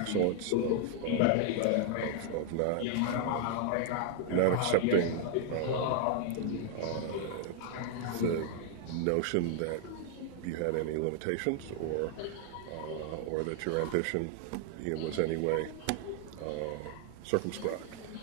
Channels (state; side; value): different; both; correlation 0.00